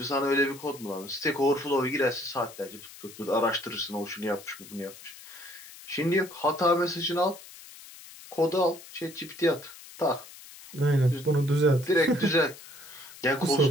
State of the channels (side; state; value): left; noise; hiss, 18 dB below the sound